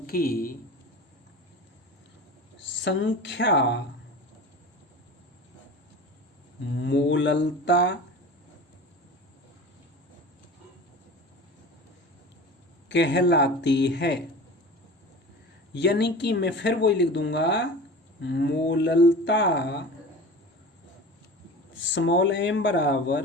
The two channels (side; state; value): both; normal; correlation 0.35